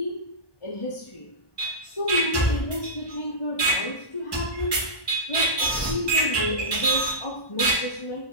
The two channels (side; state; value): right; late; 1.2 ms